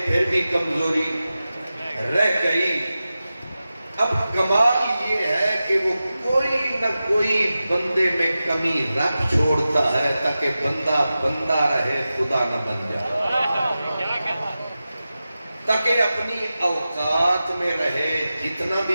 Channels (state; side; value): inverted; both; correlation -0.94